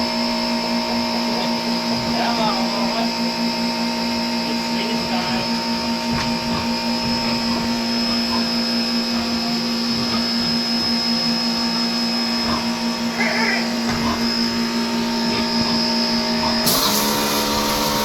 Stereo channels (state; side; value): identical; both; correlation 1.00